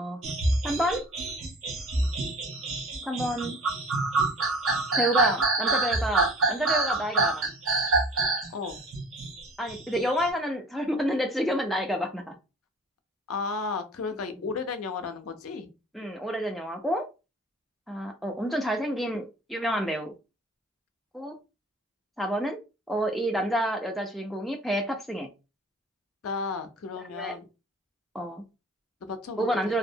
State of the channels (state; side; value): normal; both; correlation 0.46